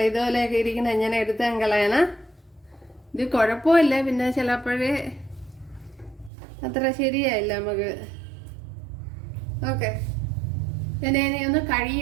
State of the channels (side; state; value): left; drops out; at 6.3 s